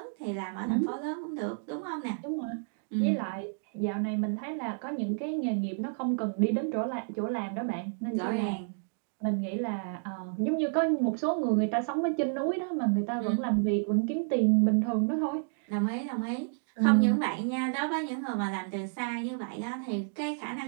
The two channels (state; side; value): silent; left; digital silence